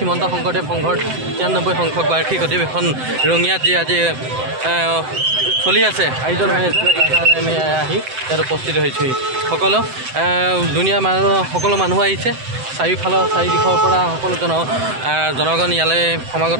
শংকৰদেৱ সংঘৰ 93 সংখ্যক বাৰ্ষিক অধিৱেশন ৰঙিয়াত যি আজি চলি আছে আয়োজন হৈ আছে তাৰকাৰণে আমি আহি ইয়াত উপস্থিত হৈছোঁহি সকলো মানুহ আহিছে চাৰিওফালৰ চাৰিদিশৰ পৰা সকলো জনগণ ইয়ালৈ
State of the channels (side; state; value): left; late; 7.8 ms